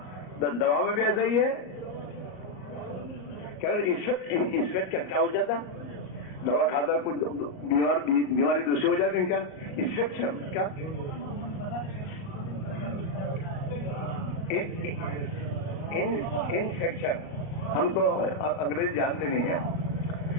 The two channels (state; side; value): late; right; 38 ms